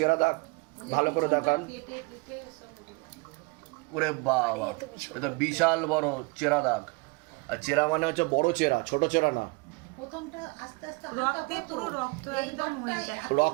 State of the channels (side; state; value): left; quieter; 27.3 dB